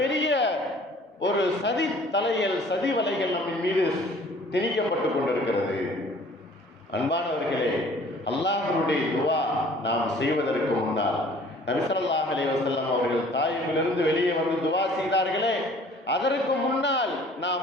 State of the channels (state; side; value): normal; both; correlation 0.52